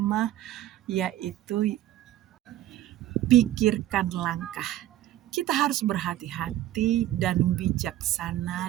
yaitu pikirkan langkah. Kita harus berhati-hati dan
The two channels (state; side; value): quieter; left; 13.6 dB